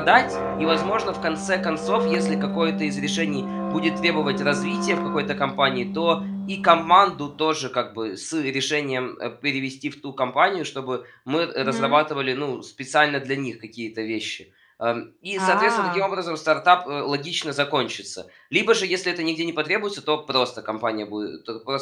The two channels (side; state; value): both; identical; correlation 1.00